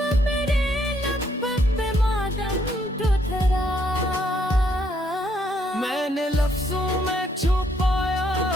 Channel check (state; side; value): normal; both; correlation 0.71